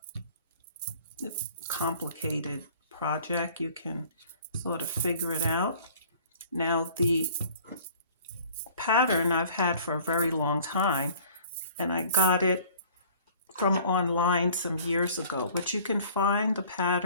complicated project. You can sort of figure it out. Now, the pattern I've had for a very long time, and I got it from online some years ago, but you can find the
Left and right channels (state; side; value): inverted; both; correlation -0.51